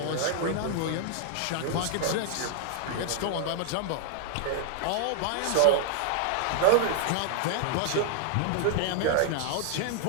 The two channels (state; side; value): different; both; correlation 0.00